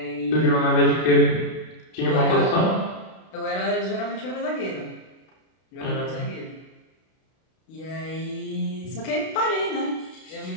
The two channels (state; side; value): late; right; 32 ms